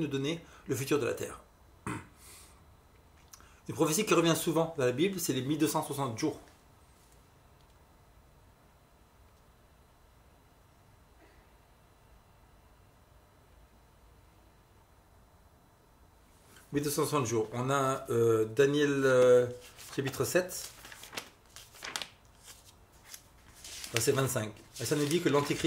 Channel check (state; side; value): identical; both; correlation 1.00